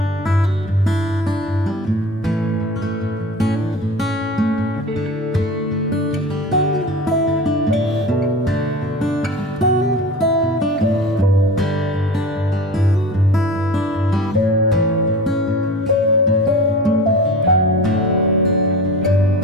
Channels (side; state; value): both; normal; correlation 0.35